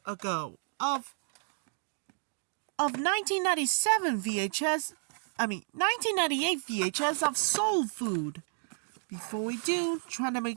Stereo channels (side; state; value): left; silent; 57 dB below the other